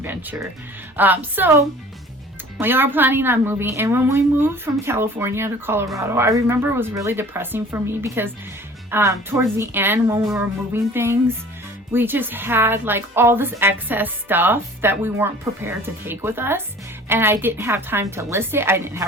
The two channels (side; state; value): both; normal; correlation 0.47